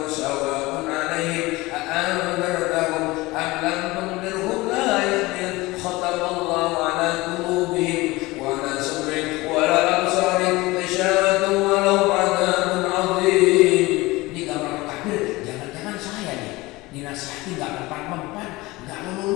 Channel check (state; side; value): quieter; right; 21.1 dB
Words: sawa'un 'alaihim a'anzartahum am lam tunzirhum la yu'minun khatamallahu 'ala qulubihim wa 'ala sam'ihim wa 'ala absarihim ghishawatun wa lahum 'adzabun 'adzim. Ini gambaran kafir, jangan-jangan saya nih dinasihati enggak mempan-mempan, enggak